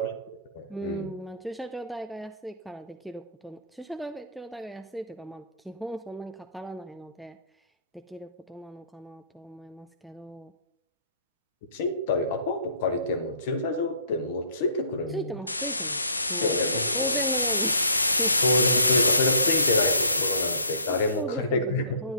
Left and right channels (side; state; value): both; inverted; correlation -0.56